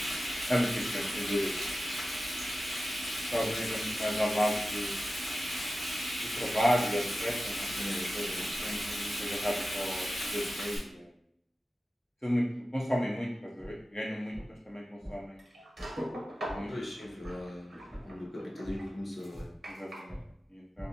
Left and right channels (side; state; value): both; normal; correlation 0.94